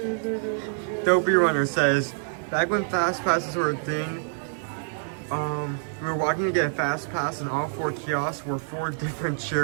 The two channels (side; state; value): left; silent; digital silence